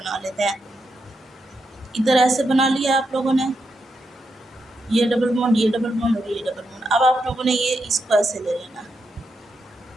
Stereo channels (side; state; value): both; normal; correlation 0.84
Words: लेते हैं। इधर ऐसे बना लिया आप लोगों ने, ये डबल बॉन्ड, ये डबल बॉन्ड और ये डबल बॉन्ड। अब आप लोगों ने ये इसको ऐसे ले लेना,